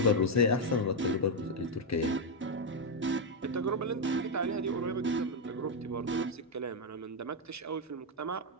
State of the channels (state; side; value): normal; both; correlation 0.03